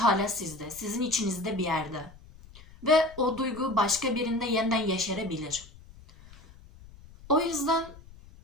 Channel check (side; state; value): left; noise; rumble, 21 dB below the sound